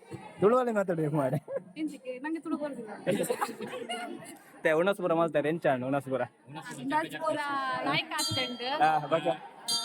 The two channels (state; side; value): identical; both; correlation 1.00